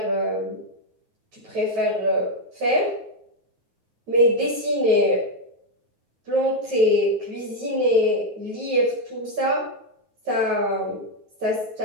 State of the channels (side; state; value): left; late; 9.4 ms